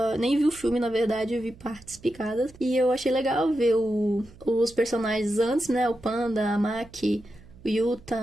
nem vi o filme, na verdade, eu vi partes picadas. E eu achei legal ver os personagens antes, né? O Panda, a Maki, o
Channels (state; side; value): noise; right; hum, 23 dB below the sound